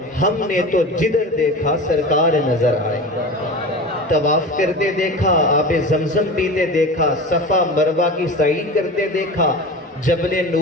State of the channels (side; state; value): both; normal; correlation 0.32